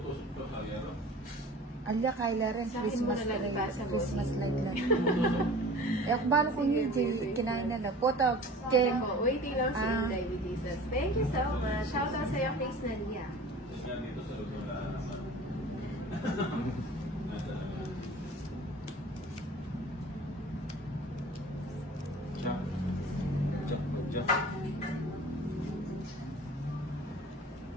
Alya, Kyla rin. Sa akin mo Christmas na lang ba sa Christmas light lang. Eh, balo ko hindi. Kinain na lang. Photo. Jen. Waiting lang si Inday with Jesus. Thank you so much. Shout out sa'yo, Face Nadia.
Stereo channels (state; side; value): normal; both; correlation 0.42